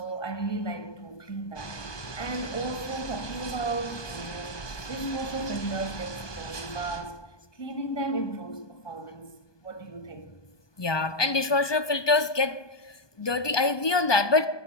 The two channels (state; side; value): late; right; 1.2 ms